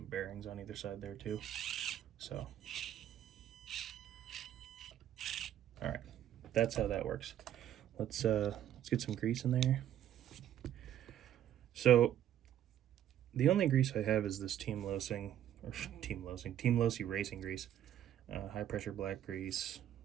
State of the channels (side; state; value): left; quieter; 11.2 dB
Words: bearings on either side there too. So, all right, that's how that works. Let's get some grease in there. So the only grease I have is this Team Losi racing grease, high pressure black grease,